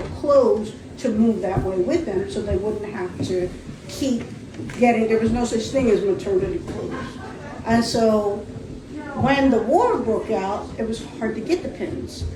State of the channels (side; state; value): both; identical; correlation 1.00